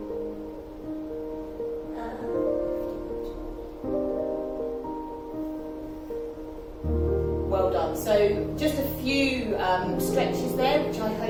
Well done. So just a few stretches there, which I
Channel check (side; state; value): both; identical; correlation 1.00